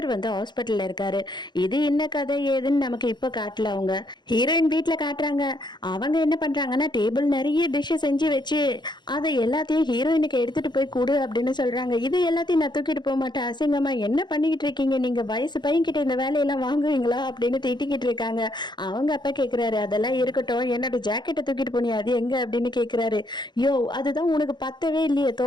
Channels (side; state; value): right; late; 0.21 ms